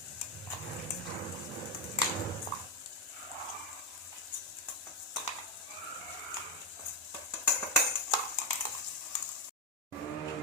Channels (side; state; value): both; normal; correlation 0.07